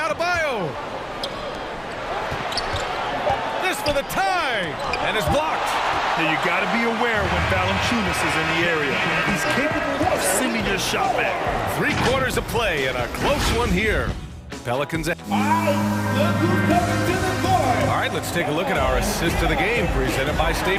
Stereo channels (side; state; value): both; identical; correlation 1.00